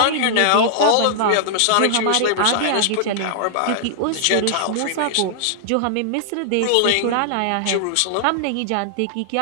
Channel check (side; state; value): both; different; correlation -0.01